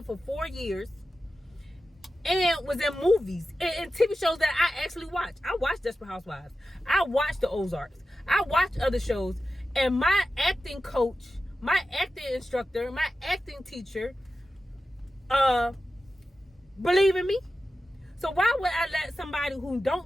for 4 years and was in movies and TV shows that I actually watch. I watch Desperate Housewives. I watch The Ozarks. I watch other shows. And my acting coach, my acting instructor, my acting teacher, believe in me. So why would I let somebody who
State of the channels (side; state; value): both; normal; correlation 0.92